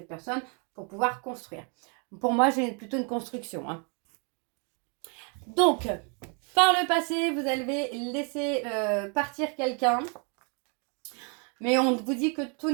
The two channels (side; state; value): left; quieter; 36.7 dB